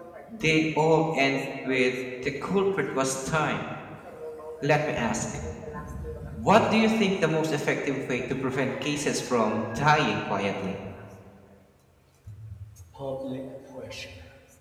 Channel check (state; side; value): identical; both; correlation 1.00